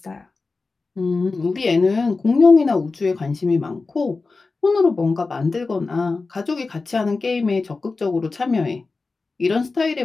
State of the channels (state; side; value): quieter; right; 3.9 dB